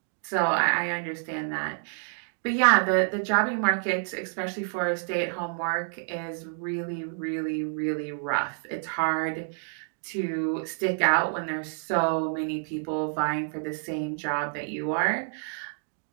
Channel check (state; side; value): silent; left; digital silence